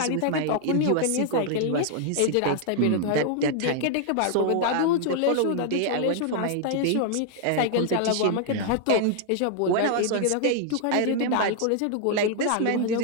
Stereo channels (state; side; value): different; both; correlation 0.00